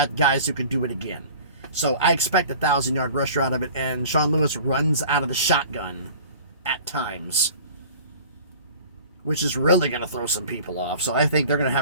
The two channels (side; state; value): both; inverted; correlation -0.45